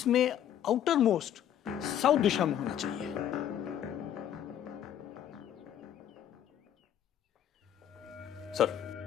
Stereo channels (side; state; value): right; quieter; 10.3 dB